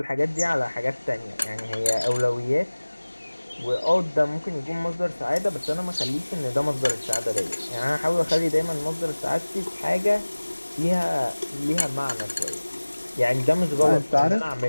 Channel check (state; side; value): inverted; both; correlation -1.00